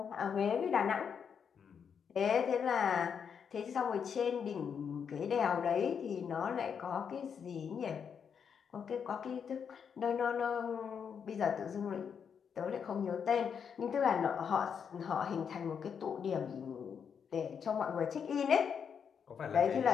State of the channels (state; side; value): quieter; right; 7.1 dB